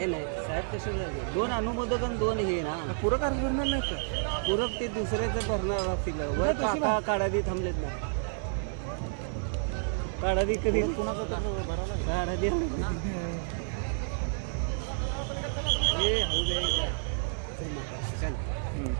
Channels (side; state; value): left; silent; digital silence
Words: नाही साहेब, तसे दोन अनुमोदक आणि दोन हे ना पूरक अर्ज भरणार नाही का? पूरक ते दुसऱ्याचं भरणार असतील. वर काका काढादी थांबलेत ना, काढादी कधी काढादी हे चल